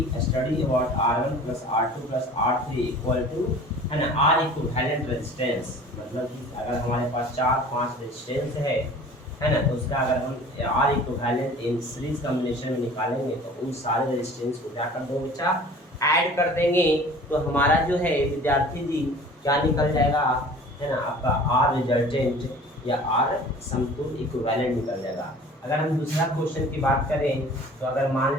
study about R1 plus R2 plus R3 equal to, है ना, R equivalent resistance. मतलब कि अगर हमारे पास 4-5 रेजिस्टेंस है ना, तो उसका अगर हम R equivalent in series combination में निकालेंगे तो उन सारे रेजिस्टेंस को क्या कर दो बच्चा, ऐड कर देंगे। तो हमारा जो है विद्यार्थी जी क्या निकल जाएगा, है ना, आपका R रिजल्टेंट या R समतुल्य इक्विवेलेंट निकल जाएगा। अगर हम दूसरा क्वेश्चन की बात करें तो अगर मान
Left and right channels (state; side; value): normal; both; correlation 0.45